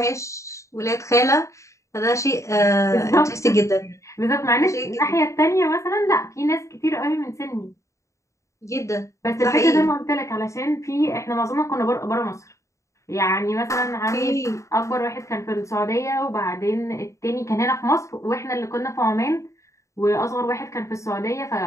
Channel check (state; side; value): late; right; 0.15 ms